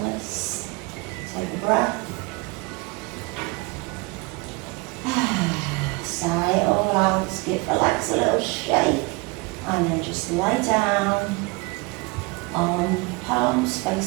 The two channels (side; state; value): left; quieter; 26.4 dB